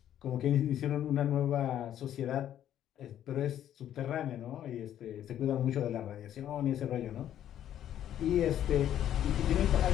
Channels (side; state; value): right; quieter; 11.0 dB